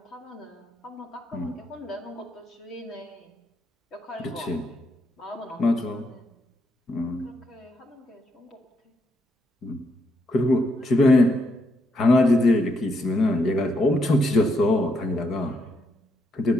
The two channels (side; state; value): both; normal; correlation 0.78